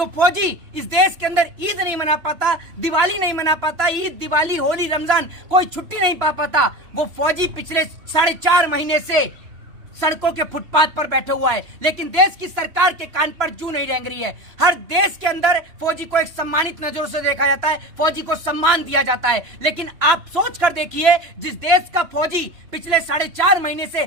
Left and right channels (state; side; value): late; left; 3.0 ms